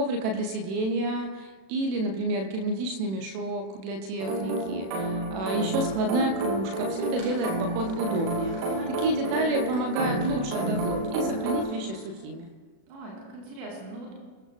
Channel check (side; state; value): left; late; 36 ms